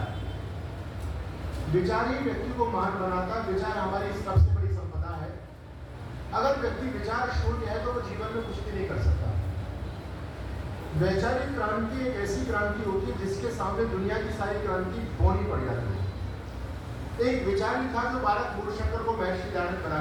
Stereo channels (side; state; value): both; identical; correlation 1.00